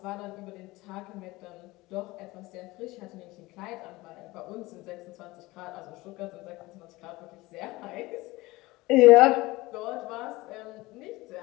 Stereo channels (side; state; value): right; quieter; 20.5 dB